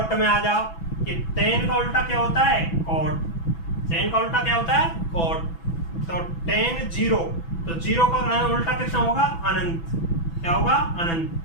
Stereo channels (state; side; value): late; right; 6.0 ms